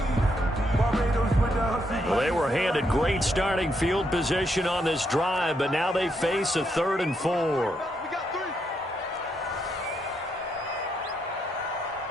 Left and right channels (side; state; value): both; normal; correlation 0.78